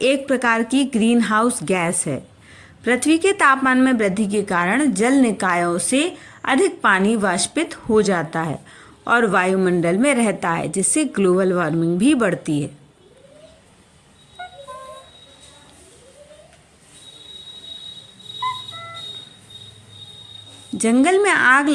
प्रकार की ग्रीन हाउस गैस है। पृथ्वी के तापमान में वृद्धि के कारण जल निकायों से अधिक पानी वाष्पित हो जाता है और वायुमंडल में रहता है, जिससे ग्लोबल वार्मिंग भी बढ़ती है। जंगल में आग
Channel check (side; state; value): both; identical; correlation 1.00